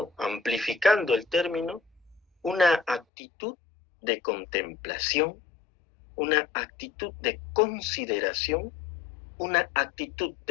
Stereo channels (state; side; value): drops out; right; at 3.1 s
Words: amplificando el término, una actitud de contemplación, una actitud de consideración, una actitud